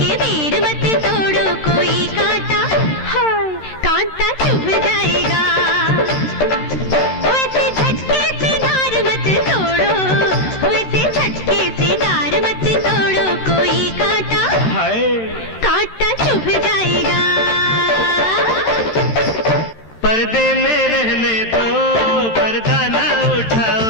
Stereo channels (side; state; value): right; late; 13 ms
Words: बेर मत तोड़ो, कोई कांटा, हाय कांटा चुभ जाएगा। वैसे झटके से डार मत तोड़ो, वैसे झटके से डार मत तोड़ो, कोई कांटा, हाय कांटा चुभ जाएगा। पर्दे में रहने दो, पर्दा ना उठाओ,